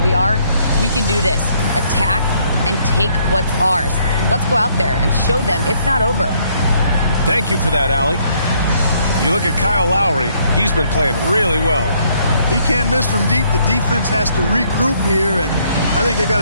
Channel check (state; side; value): inverted; both; correlation -0.68